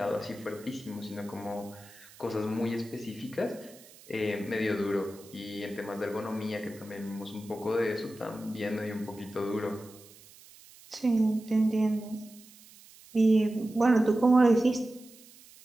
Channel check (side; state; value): right; noise; hiss, 22 dB below the sound